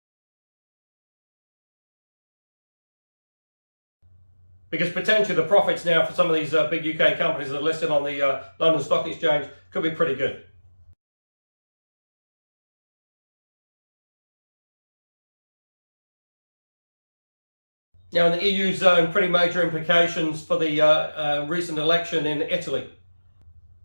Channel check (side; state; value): both; inverted; correlation -1.00